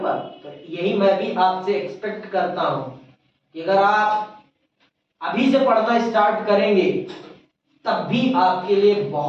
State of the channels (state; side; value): identical; both; correlation 1.00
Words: तो यही मैं भी आपसे एक्सपेक्ट करता हूं कि अगर आप अभी से पढ़ना स्टार्ट करेंगे तब भी आपके लिए